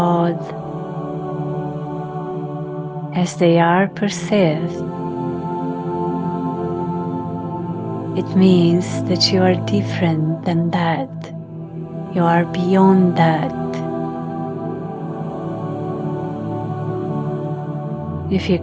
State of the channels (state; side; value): identical; both; correlation 1.00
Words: as they are perceived, it means that you are different than that. You are beyond that. If you